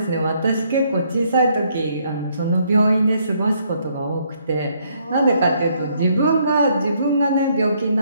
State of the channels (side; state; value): both; inverted; correlation -0.70